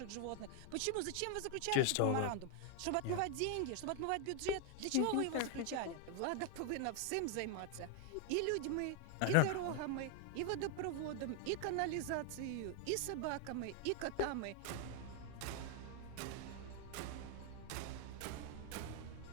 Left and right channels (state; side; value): different; both; correlation 0.00